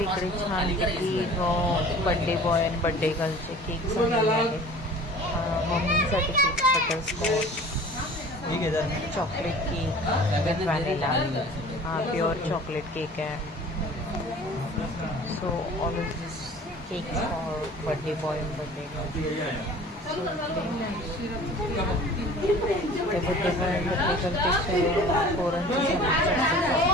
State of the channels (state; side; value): normal; both; correlation 0.44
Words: छान बर्थडे बॉय आणि बर्थडे गर्लचे केक झालेले आहेत. मम्मीसाठी cake butterscotch, chocolate cake with vanilla. हा प्युअर चॉकलेट केक आहे. So all of this cake for birthday boy आणि बर्थडे गर्ल. ते बर्थडे बॉय आणि बर्थडे गर्लपेक्षा पोरांची